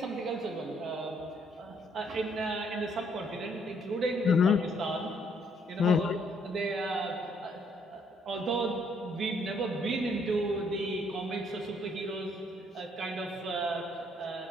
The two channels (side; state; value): both; normal; correlation 0.68